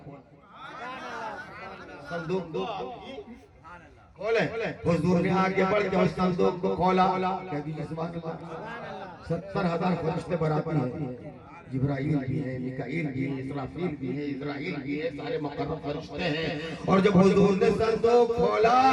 صندوق کھولیں۔ حضور نے آگے بڑھ کے اس صندوق کو کھولا، کہہ دیجئے سبحان اللہ، 70,000 فرشتے براتی ہیں، جبرائیل بھی ہے، میکائیل بھی ہے، اسرافیل بھی ہے، اسرائیل بھی ہے، سارے مقرب فرشتے ہیں۔ اور جب حضور نے صندوق کھولا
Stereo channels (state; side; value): identical; both; correlation 1.00